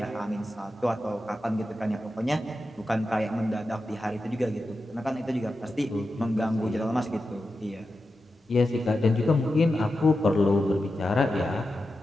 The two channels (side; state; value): both; normal; correlation 0.90